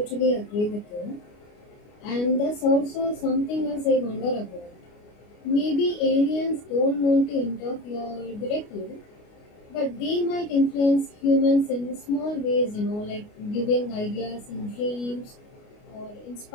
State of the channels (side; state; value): right; late; 29 ms